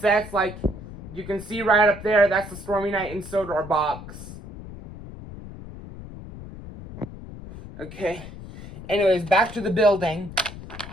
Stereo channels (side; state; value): left; noise; rumble, 13 dB below the sound